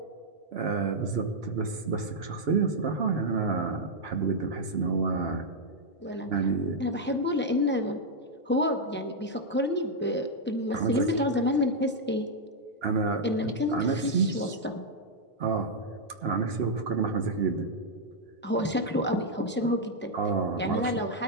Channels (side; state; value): both; normal; correlation -0.03